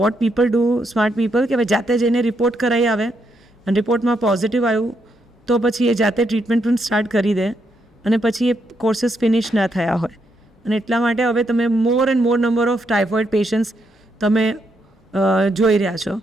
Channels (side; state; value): both; normal; correlation 0.78